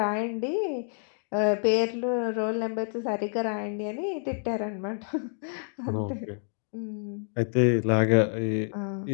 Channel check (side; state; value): right; silent; 58 dB below the other